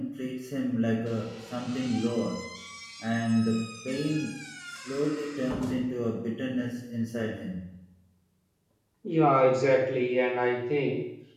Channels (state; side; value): identical; both; correlation 1.00